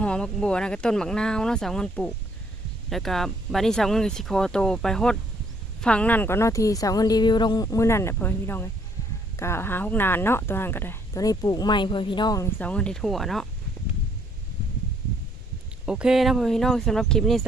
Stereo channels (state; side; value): normal; both; correlation 0.66